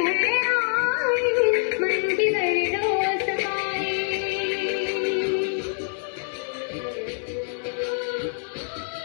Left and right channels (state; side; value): silent; right; 59 dB below the other